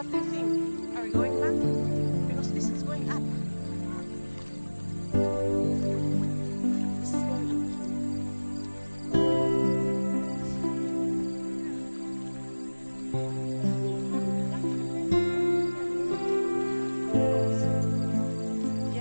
do you think? Are we going back? Because this is going up. This is going up.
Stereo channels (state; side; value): inverted; both; correlation -1.00